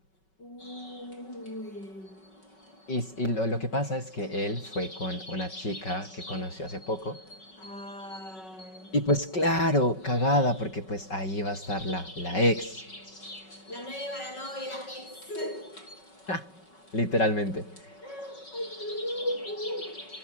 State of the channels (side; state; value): right; late; 5.3 ms